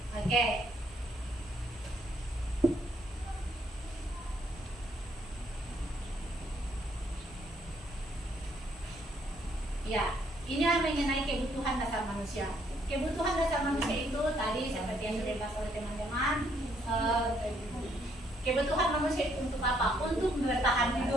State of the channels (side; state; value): both; normal; correlation 0.69